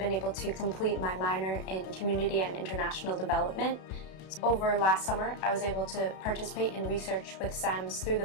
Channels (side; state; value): right; late; 33 ms